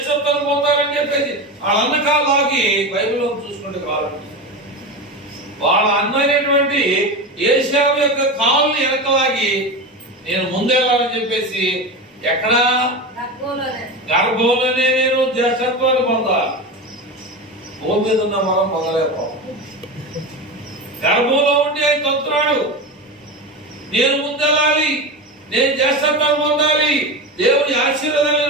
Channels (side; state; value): both; normal; correlation 0.22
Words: పొందాలని చెప్పేసి వాళ్ళ అన్న కాళ్ళకి బైబిల్లో చూసుకుంటే కావాలండి. వాళ్ళ అన్న అయినటువంటి ఏశావు యొక్క కాళ్ళని వెనకలాగి నేను ముందెళ్ళాలని చెప్పేసి ఎక్కడ గర్భంలోనే నేను జ్యేష్ఠత్వాన్ని పొందాలి. భూమి మీద ఉన్న మనం పొందలేకపో. గర్భంలో ఉండి ఆయన తొంతున్నాడు, నేను ముందెళ్ళాలి, నేను జ్యేష్ఠత్వాన్ని పొందాలి, దేవుని ఆశీర్వాదాలు